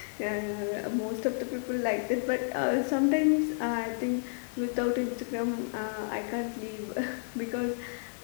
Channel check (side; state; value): right; silent; digital silence